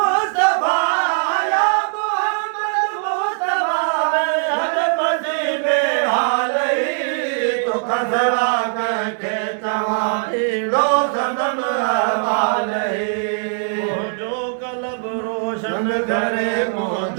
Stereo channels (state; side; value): silent; left; digital silence